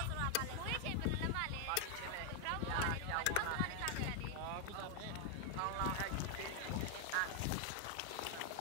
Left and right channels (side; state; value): both; different; correlation 0.00